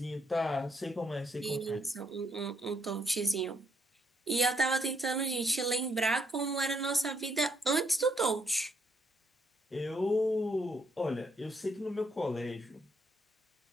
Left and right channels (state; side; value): normal; both; correlation 0.72